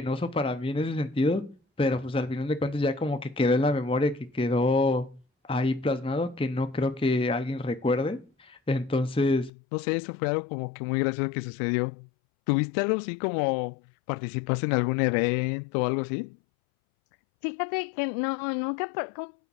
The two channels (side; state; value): right; drops out; at 9.5 s